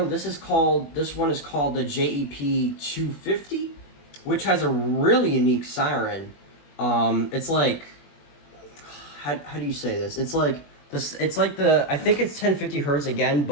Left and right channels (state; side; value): late; right; 21 ms